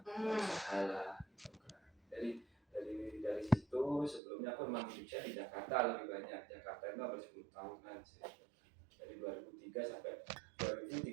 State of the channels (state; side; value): drops out; left; at 4.2 s